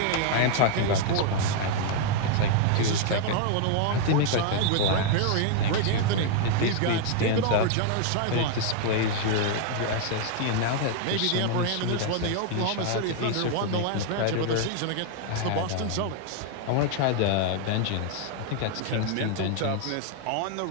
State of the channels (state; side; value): different; both; correlation 0.00